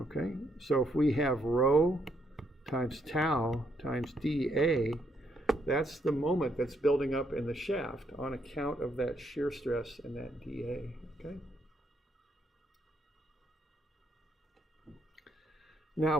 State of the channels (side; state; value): both; normal; correlation 0.74